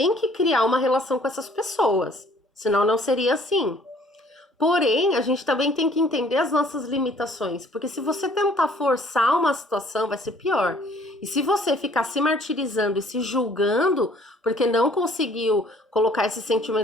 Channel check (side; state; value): both; normal; correlation 0.57